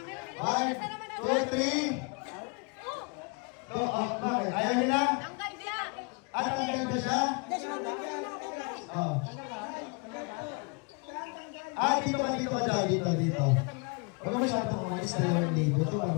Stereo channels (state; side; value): quieter; right; 32.6 dB